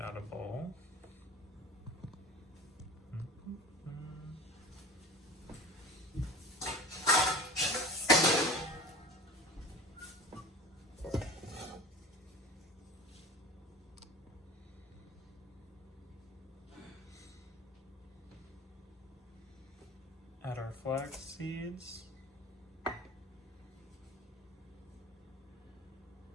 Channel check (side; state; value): both; normal; correlation 0.37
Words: out a bowl. Add our flax seeds.